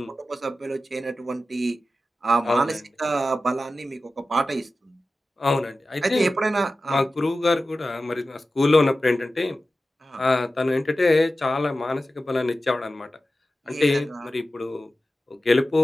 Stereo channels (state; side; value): normal; both; correlation 0.94